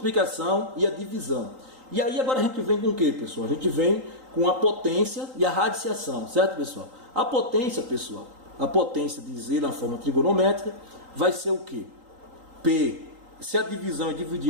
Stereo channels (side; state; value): left; late; 3.8 ms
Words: e a divisão. E aí agora a gente vem com o que, pessoal? A gente vem com a potência e a radiciação, certo, pessoal? A potência, pessoal, a potência de Z na forma trigonométrica vai ser o que? P, se a divisão é